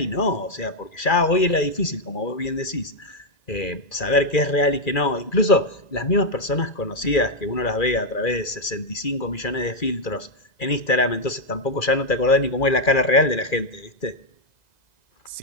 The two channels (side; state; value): right; late; 2.4 ms